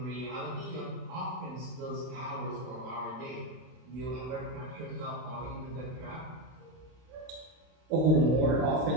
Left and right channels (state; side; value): late; left; 32 ms